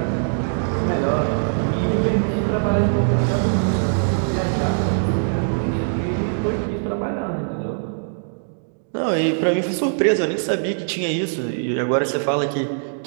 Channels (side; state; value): left; silent; digital silence